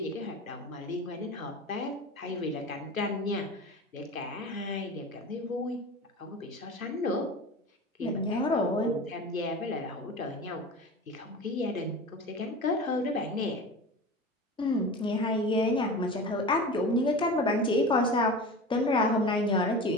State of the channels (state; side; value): normal; both; correlation 0.33